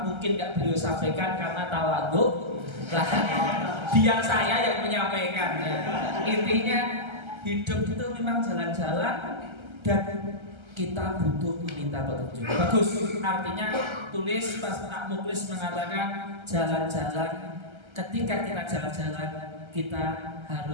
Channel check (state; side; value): late; left; 1.3 ms